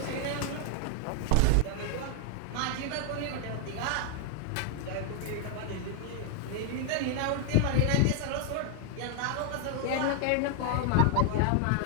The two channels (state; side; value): different; both; correlation 0.00